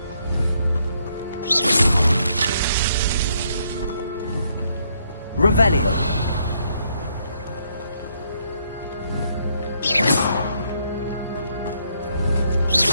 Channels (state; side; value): inverted; both; correlation -0.72